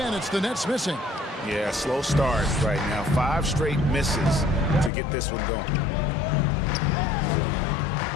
it's the Nets missing. Yeah, slow start right now. 5 straight misses to get this one going.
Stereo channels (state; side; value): drops out; right; at 4.9 s